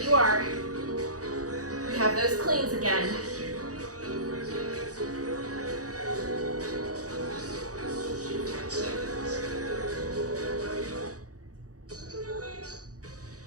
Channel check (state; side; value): late; left; 0.67 ms